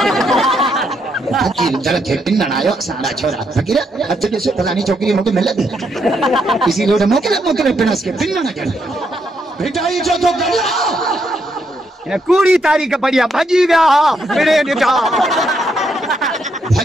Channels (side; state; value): both; normal; correlation 0.77